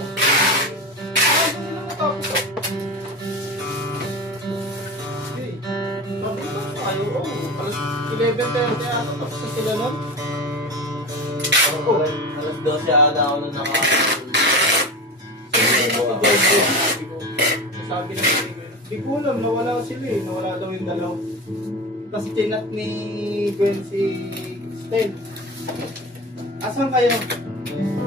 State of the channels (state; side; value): normal; both; correlation 0.28